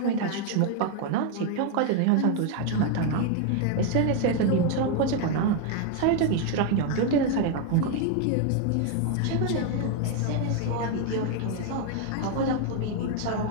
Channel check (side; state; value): both; different; correlation 0.01